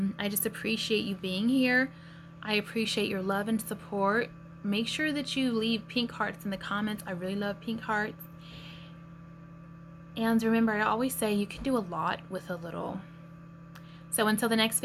just appreciate you being here. I appreciate your love and support. Make sure that you leave pink hearts in the comments. I really love pink hearts. And remember, I always say you can do a lot with a little. So until the next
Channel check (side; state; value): both; identical; correlation 1.00